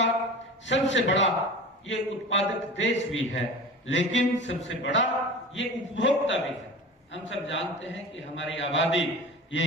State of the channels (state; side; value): normal; both; correlation 0.34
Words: सबसे बड़ा ये उत्पादक देश भी है, लेकिन सबसे बड़ा ये उपभोक्ता भी है। हम सब जानते हैं कि हमारी आबादी